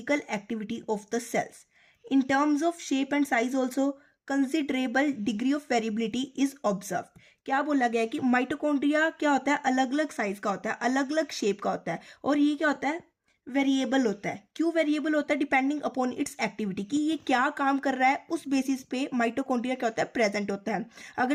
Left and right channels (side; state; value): both; identical; correlation 1.00